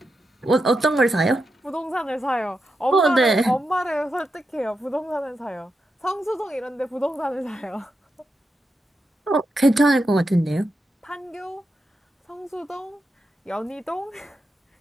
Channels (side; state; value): both; normal; correlation 0.86